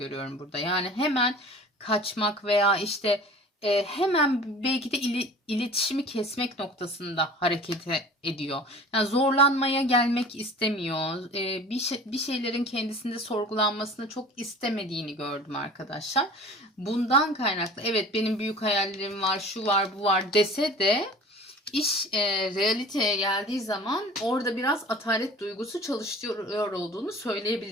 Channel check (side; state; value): both; normal; correlation 0.42